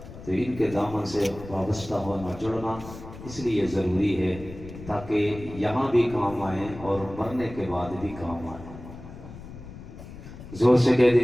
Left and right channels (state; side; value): noise; left; rumble, 14 dB below the sound